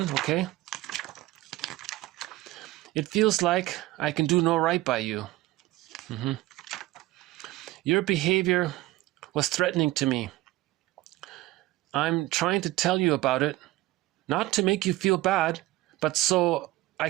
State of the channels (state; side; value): quieter; left; 17.6 dB